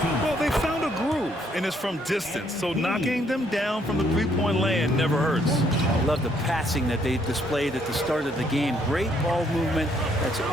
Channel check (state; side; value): normal; both; correlation 0.69